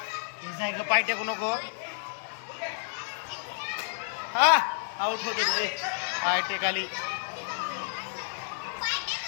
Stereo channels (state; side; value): silent; right; 58 dB below the other